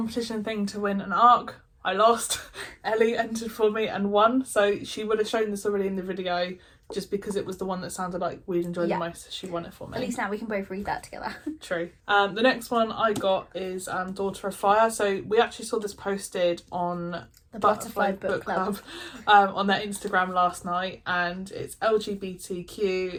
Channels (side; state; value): both; identical; correlation 1.00